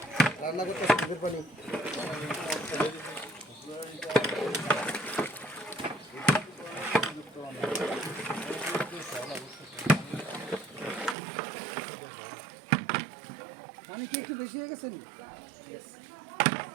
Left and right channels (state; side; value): drops out; left; at 11.2 s